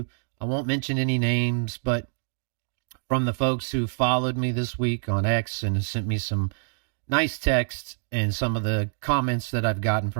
I won't mention any names, but from the folks who followed me this week on X and have sent me some nice texts and some of the comments that I've gotten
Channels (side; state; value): left; silent; digital silence